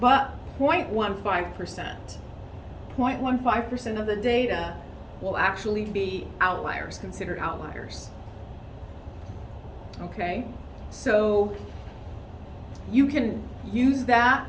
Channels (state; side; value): identical; both; correlation 1.00